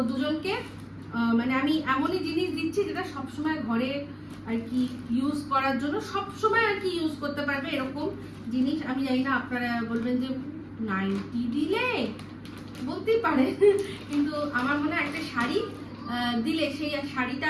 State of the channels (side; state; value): both; identical; correlation 1.00